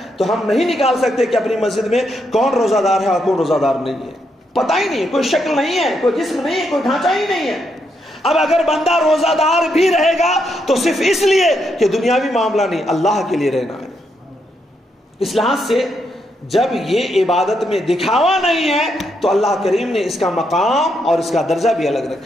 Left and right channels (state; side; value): normal; both; correlation 0.79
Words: تو ہم نہیں نکال سکتے کہ اپنی مسجد میں کون روزہ دار ہے اور کون روزہ دار نہیں ہے، پتہ ہی نہیں ہے، کوئی شکل نہیں ہے، کوئی جسم نہیں ہے، کوئی ڈھانچہ ہی نہیں ہے۔ اب اگر بندہ روزہ دار بھی رہے گا تو صرف اس لیے کہ دنیاوی معاملہ نہیں، اللہ کے لیے رہنا ہے۔ اس لحاظ سے جب یہ عبادت میں دکھاوا نہیں ہے تو اللہ کریم نے اس کا مقام اور اس کا درجہ بھی الگ